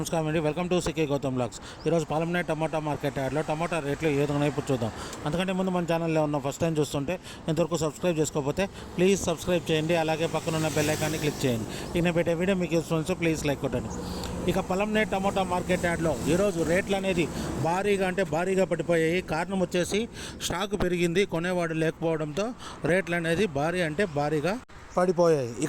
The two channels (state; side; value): identical; both; correlation 1.00